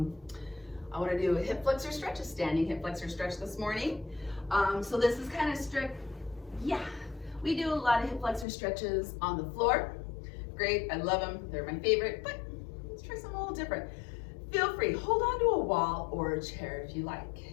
want to do a hip flexor stretch, a standing hip flexor stretch this morning. So this is kind of strict. Yeah, we do a lot of hip flexor stretches on the floor. Great, I love them. They're my favorite, but let's try something a little different. Feel free, hold on to a wall or a chair if you like.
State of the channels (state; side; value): drops out; right; at 8.5 s